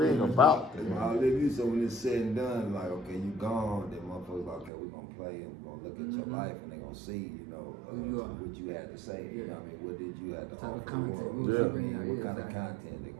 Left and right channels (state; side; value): drops out; left; at 4.7 s